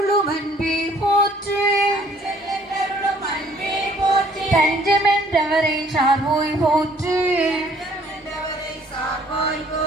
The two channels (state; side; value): normal; both; correlation 0.59